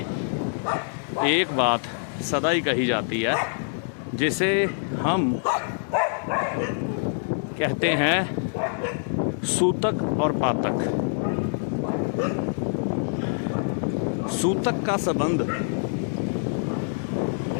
एक बात सदा ही कही जाती है, जिसे हम कहते हैं सूतक और पातक। सूतक का संबंध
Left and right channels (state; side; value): silent; right; digital silence